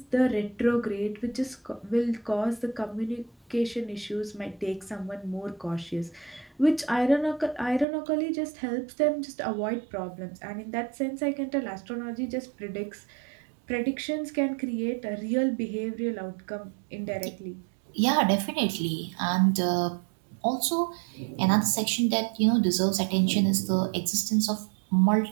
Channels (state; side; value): drops out; left; at 7.9 s